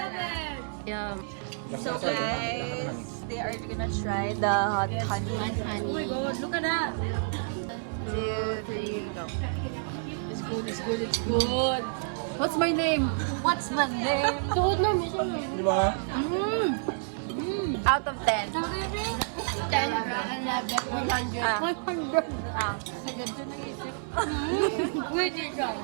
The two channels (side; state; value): left; silent; 57 dB below the other